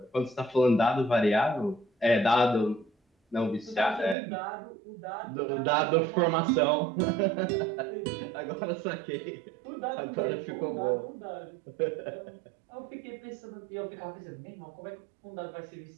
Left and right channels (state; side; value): drops out; left; at 4.2 s